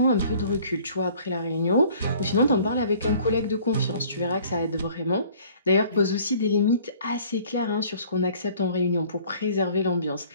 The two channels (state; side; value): inverted; both; correlation -0.54